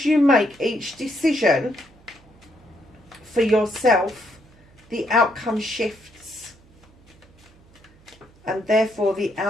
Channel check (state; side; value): noise; right; hum, 28 dB below the sound